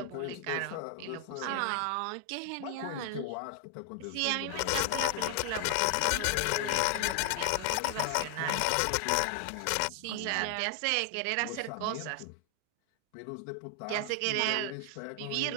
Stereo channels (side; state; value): both; different; correlation 0.00